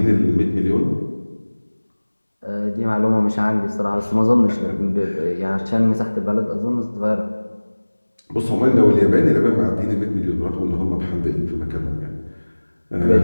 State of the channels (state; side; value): inverted; both; correlation -1.00